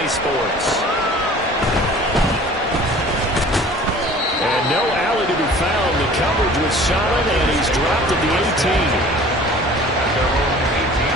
Sports. And no alley to be found. The coverage was solid, and he's dropped at the 18.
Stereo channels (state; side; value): normal; both; correlation 0.46